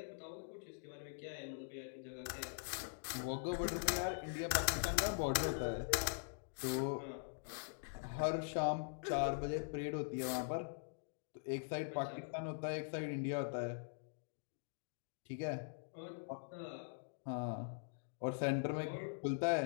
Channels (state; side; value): silent; right; digital silence